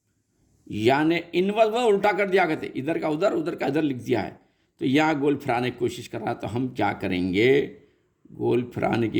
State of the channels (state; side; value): identical; both; correlation 1.00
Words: यानी इनवर्स वो उल्टा कर दिया कहते, इधर का उधर का इधर लिख दिया है, तो यहाँ गोल फिराने की कोशिश कर रहा है। तो हम क्या करेंगे, गोल फिराने